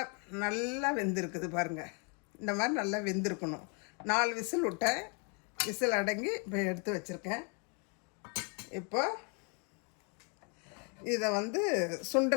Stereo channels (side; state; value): right; quieter; 36.2 dB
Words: நல்லா வெந்திருக்குது பாருங்கள். இந்த மாதிரி நல்லா வெந்திருக்கணும். 4 விசில் விட்டேன். விசில் அடங்கி இப்போ எடுத்து வச்சுருக்கேன். இப்போ இதை